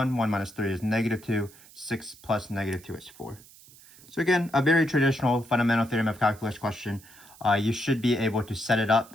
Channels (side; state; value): right; noise; hiss, 23 dB below the sound